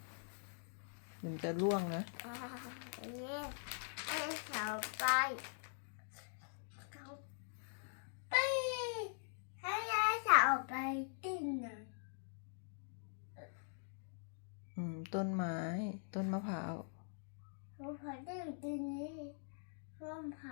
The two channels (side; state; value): right; silent; digital silence